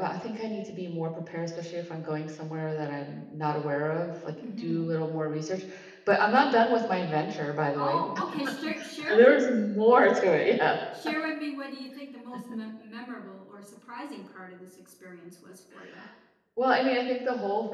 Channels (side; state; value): both; identical; correlation 1.00